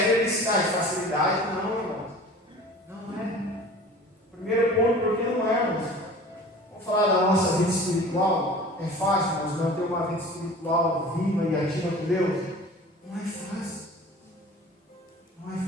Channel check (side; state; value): both; normal; correlation 0.42